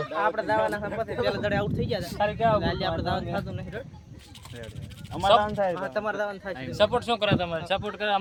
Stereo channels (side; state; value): both; identical; correlation 1.00